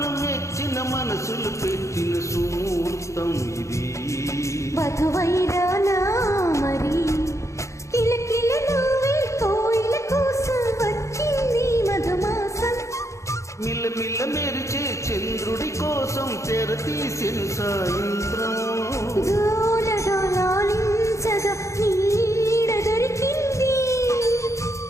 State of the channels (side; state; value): right; late; 0.14 ms